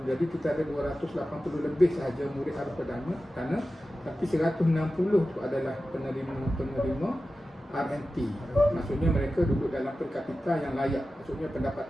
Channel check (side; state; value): both; normal; correlation 0.94